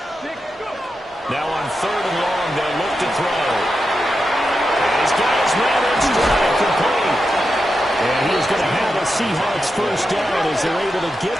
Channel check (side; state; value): both; normal; correlation 0.88